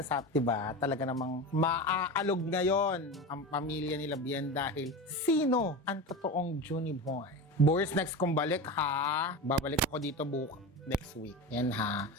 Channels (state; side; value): normal; both; correlation 0.25